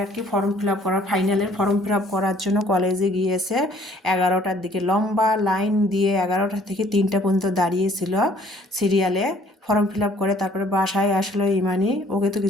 আর কি ফর্ম ফিল আপ করা, ফাইনালের ফর্ম ফিল আপ করার জন্য কলেজে গিয়েছে। 11টার দিকে লম্বা লাইন দিয়ে 11টা থেকে 3টা পর্যন্ত দাঁড়িয়েছিল সিরিয়ালে। ফর্ম ফিল আপ করে তারপরে বাসায় আসলো ইমানি। ওকে তো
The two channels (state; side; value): normal; both; correlation 0.59